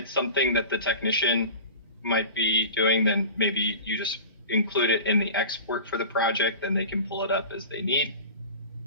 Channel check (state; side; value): inverted; both; correlation -0.36